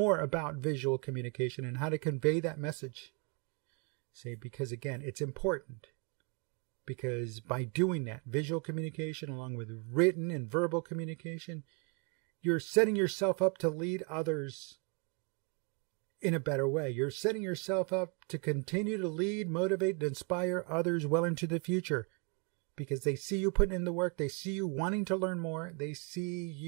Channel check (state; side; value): quieter; left; 34.4 dB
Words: about visual communication and how to convey that message. See, because again, it's important. Because by doing that, visual communication along with written and verbal communication, you're setting yourself up to lead others in a better way. You're setting yourself up to continue to lead, motivate, and inspire others well into the future. Because they see you putting in the work, they see you wanting to learn more, they see